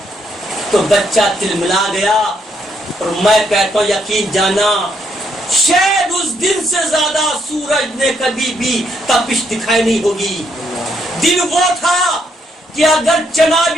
تو بچہ تلملا گیا. اور میں کہتا ہوں یقین جانا شاید اس دن سے زیادہ سورج نے کبھی بھی تپش دکھائی نہیں ہوگی. دن وہ تھا کہ اگر چنا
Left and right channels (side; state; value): both; normal; correlation 0.74